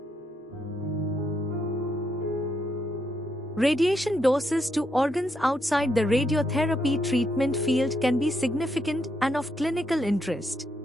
Radiation doses to organs outside the radiotherapy treatment field can be significant and of clinical interest.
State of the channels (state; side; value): normal; both; correlation 0.78